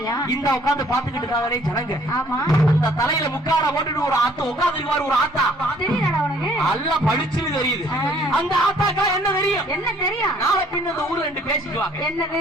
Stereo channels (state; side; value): normal; both; correlation 0.60